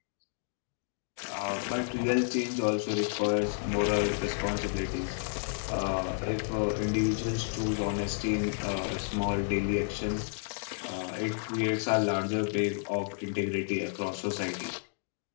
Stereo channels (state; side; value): silent; right; digital silence